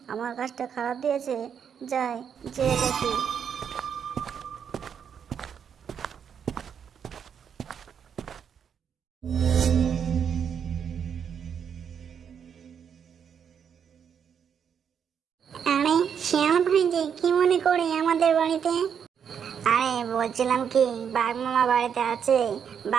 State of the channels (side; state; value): left; quieter; 7.7 dB